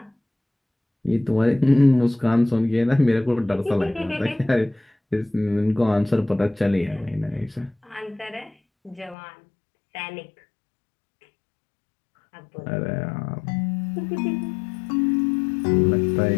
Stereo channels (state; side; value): drops out; right; at 9.2 s